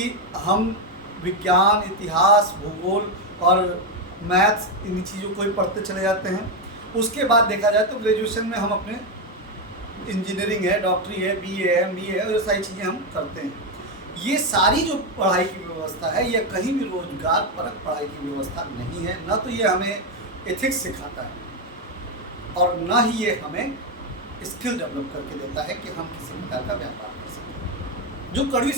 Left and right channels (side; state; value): both; normal; correlation 0.07